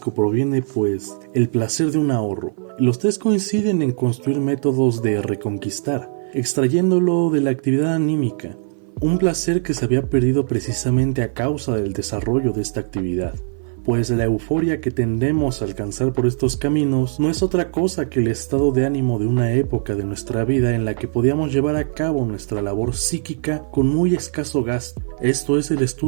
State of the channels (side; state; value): left; silent; 55 dB below the other